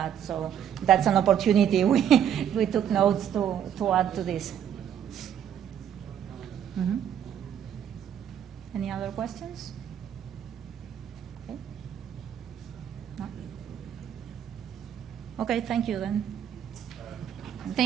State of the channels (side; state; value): left; quieter; 9.3 dB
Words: So that's an opportunity we took notes to add to this. Mm-hmm. Any other questions? Okay. No? Okay, thank you then.